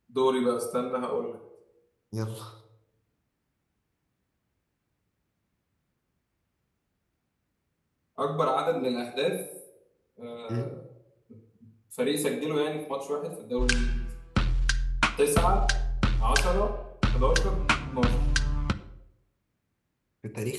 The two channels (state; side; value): identical; both; correlation 1.00